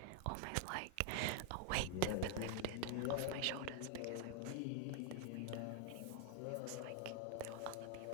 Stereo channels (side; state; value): both; different; correlation 0.00